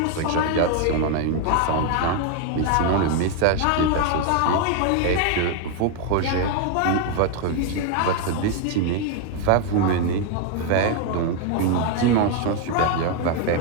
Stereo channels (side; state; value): both; different; correlation 0.01